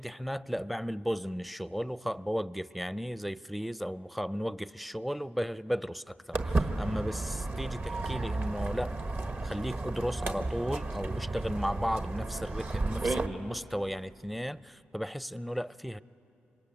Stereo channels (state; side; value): normal; both; correlation 0.96